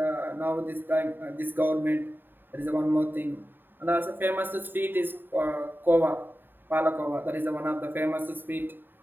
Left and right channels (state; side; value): late; left; 0.094 ms